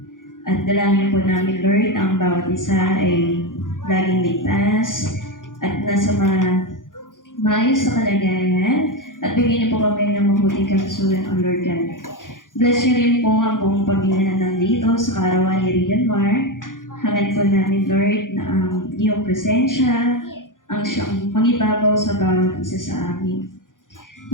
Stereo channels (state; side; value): late; right; 0.89 ms